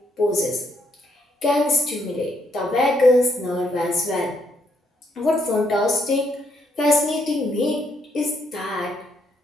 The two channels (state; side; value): normal; both; correlation 0.73